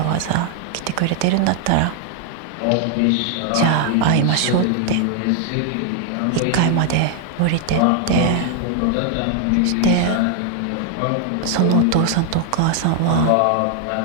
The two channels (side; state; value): both; different; correlation 0.00